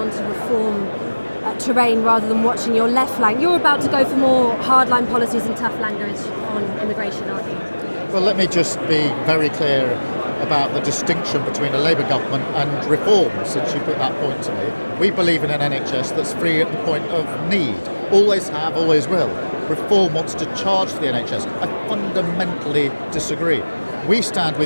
to reform terrain rather than watching your left flank? You're about to go for more hardline policies and tough language on immigration, aren't you? Well, let me just be very clear about the distinction between a Labour government and reform, since you put that point to me. We believe in an NHS that's free at the point of need. Always have, always will. Reform wants to charge for the NHS. I fundamentally disagree. We stand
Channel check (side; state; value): both; inverted; correlation -1.00